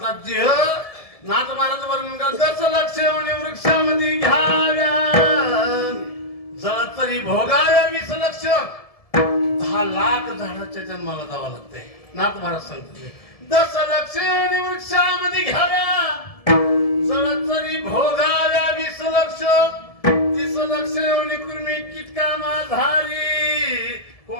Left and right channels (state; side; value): late; right; 1.7 ms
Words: देह नाथ महाराज वर्णन करत लक्ष वृक्षामध्ये घ्याव्या जळ तरी भोगाव्या 20 लक्ष 10 लाख झाडाच्या जन्माला जावं लागतंय. नाथ महाराज सांगते 10 लक्ष वृक्षामध्ये घ्याव्या जळ तरी भोगाव्या 20 लक्ष 30 लक्ष कुर्मी किटका माधारी